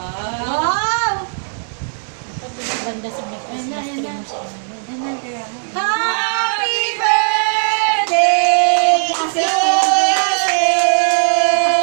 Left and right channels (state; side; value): silent; left; 68 dB below the other